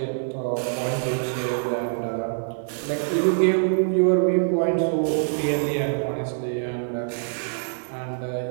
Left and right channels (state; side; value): silent; left; digital silence